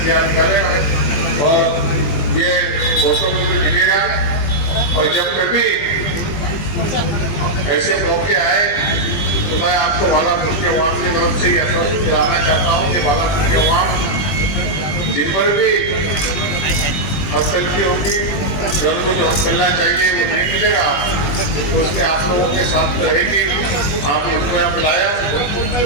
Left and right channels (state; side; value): late; right; 20 ms